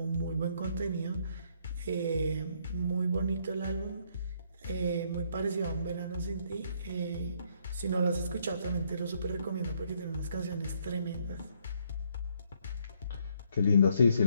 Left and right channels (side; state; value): both; inverted; correlation -0.69